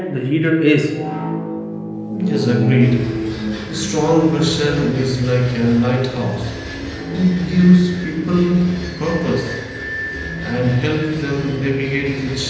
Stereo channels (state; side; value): identical; both; correlation 1.00